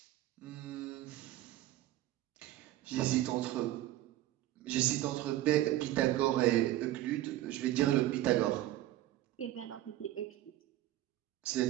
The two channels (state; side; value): quieter; left; 14.8 dB